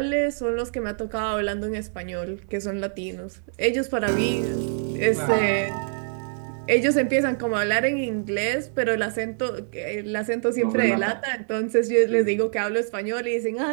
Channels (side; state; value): left; silent; digital silence